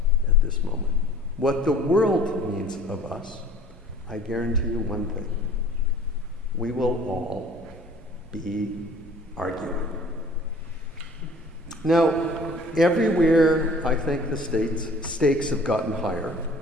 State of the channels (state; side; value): normal; both; correlation 0.50